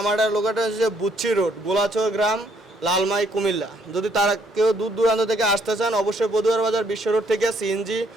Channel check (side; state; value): both; normal; correlation 0.68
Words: লোকেশন হচ্ছে বুচ্চি রোড, গোলাচর গ্রাম, লালমাই, কুমিল্লা। যদি তারা কেউ দূর দূরান্ত থেকে আসতে চান, অবশ্যই বদুয়ার বাজার বিশ্ব রোড থেকে সিএনজি